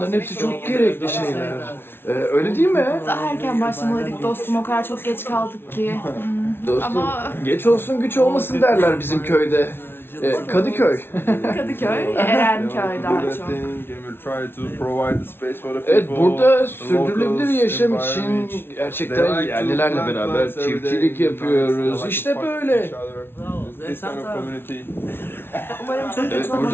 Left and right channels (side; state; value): right; late; 0.11 ms